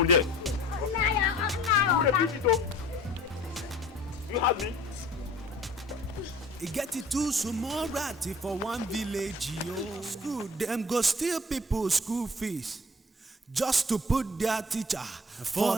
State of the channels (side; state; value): both; normal; correlation 0.47